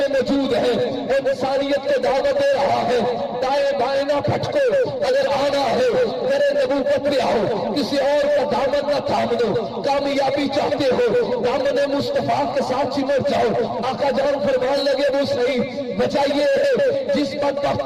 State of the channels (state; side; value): identical; both; correlation 1.00